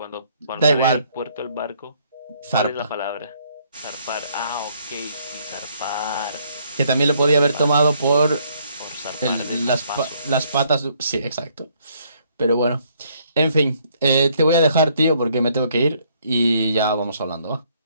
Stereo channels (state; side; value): inverted; both; correlation -0.67